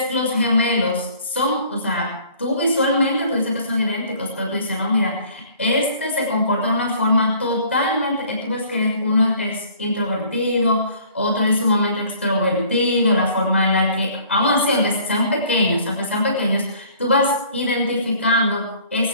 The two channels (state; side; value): inverted; both; correlation -0.55